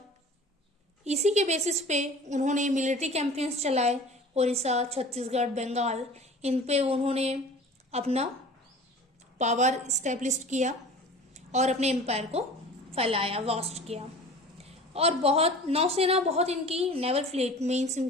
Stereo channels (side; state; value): both; normal; correlation 0.42